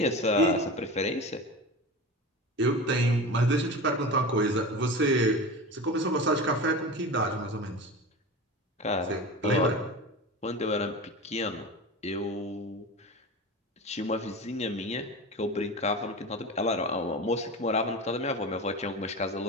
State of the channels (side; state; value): both; normal; correlation 0.29